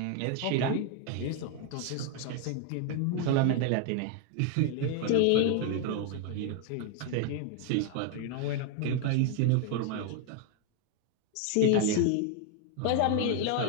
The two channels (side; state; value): both; different; correlation 0.01